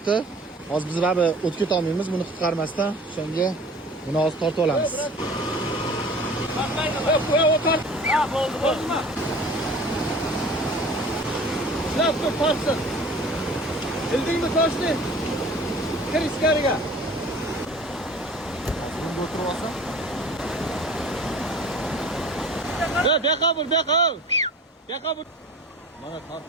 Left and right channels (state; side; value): normal; both; correlation 0.44